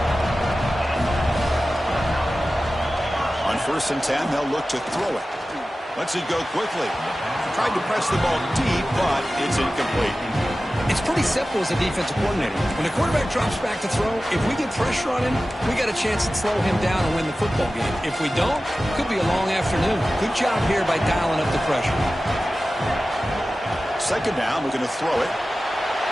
On 1st and 10, they'll look to throw it. Lets it go quickly. Tried to press the ball deep, but it's incomplete. It's pretty simple as a defensive coordinator. When the quarterback drops back to throw, if we get pressure on him, we got a chance to slow him down and win the football game. If we don't, it could be a long afternoon. Good job here by dialing up the pressure. Second down, we're going to throw it.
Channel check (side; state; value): both; normal; correlation 0.95